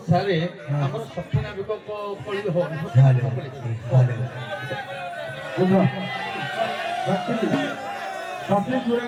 ସାରେ ଆମର ସଖୀ ନାବିକ କଳି ହବ ବୁଝ ସଖୀ ସଖୀ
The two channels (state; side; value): identical; both; correlation 1.00